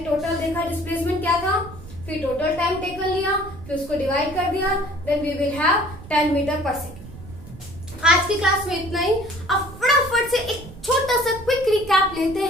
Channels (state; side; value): noise; right; rumble, 16 dB below the sound